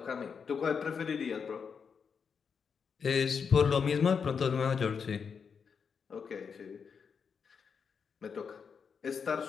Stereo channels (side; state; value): right; quieter; 6.2 dB